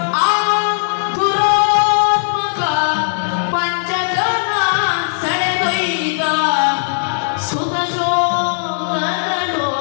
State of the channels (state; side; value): silent; right; digital silence